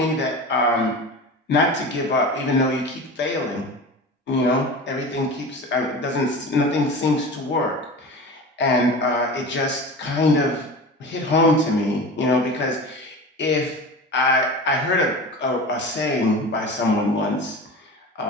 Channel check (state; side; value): normal; both; correlation 0.32